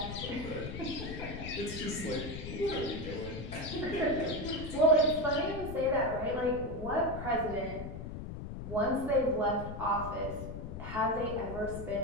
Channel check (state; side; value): noise; left; rumble, 8 dB below the sound